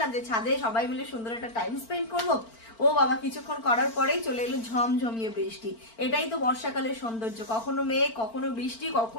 যে ছাদে সবাই মিলে সুন্দর একটা টাইম স্পেন্ড করবো। ও বাবা, কিছুক্ষণ করার পরেই চলে এলো ঝমঝমিয়ে বৃষ্টি। এটাই তো বর্ষাকালের সৌন্দর্য, কখনো মেঘ, কখনো বৃষ্টি,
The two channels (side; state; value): right; late; 4.4 ms